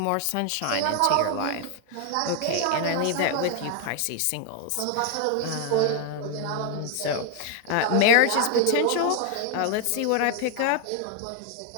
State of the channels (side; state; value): both; different; correlation 0.00